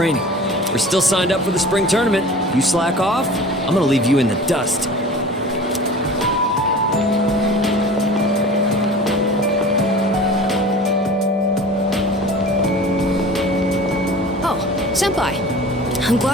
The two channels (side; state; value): both; normal; correlation 0.40